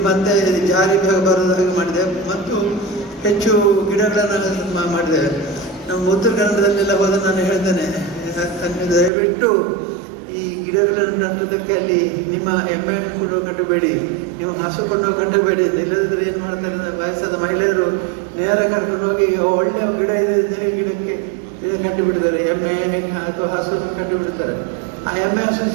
ಮತ್ತೆ ಜಾರಿ ಬರೋದ ಹಾಗೆ ಮಾಡಿದ್ದೇವೆ. ಮತ್ತು ಹೆಚ್ಚು ಗಿಡಗಳನ್ನು ಮಾಡಿದ್ದೇವೆ. ನಮ್ಮ ಉತ್ತರ ಕನ್ನಡದಲ್ಲೆಲ್ಲ ಹೋದ ನಾನು ಹೇಳ್ತೇನೆ, ದಯವಿಟ್ಟು ಈ ಗಿಡಗಳನ್ನು ನಟ್ಟೋದಕ್ಕೆ ಅಲ್ಲಿ ನಿಮ್ಮ ಎಮ್ಮೆಯನ್ನು ಕೊಂಡು ಕಟ್ಟಬೇಡಿ, ನೀವು ಹಸು ಕೊಂಡು ಕಟ್ಟಬೇಡಿ. ಇಲ್ಲದಿದ್ದರೆ ಏನು ಮಾಡ್ತಾರೆ, ವಯಸ್ಸಾದ ಮಹಿಳೆಯರು ನೇರ ಕರ್ಕೊಂಡು ಹೋಗಿ ಒಳ್ಳೆಯ ಗಿಡ ಇದೆ ಗಿಡಕ್ಕೆ ಇದನ್ನು ಕಟ್ಟಿಬಿಡ್ತಾರೆ, ಎಮ್ಮೆ ಅಥವಾ ಹಸುವನ್ನು ಕಟ್ಟಿಬಿಡ್ತಾರೆ. ಆ ಎಮ್ಮೆ ಹಸು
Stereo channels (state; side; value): drops out; left; at 9.1 s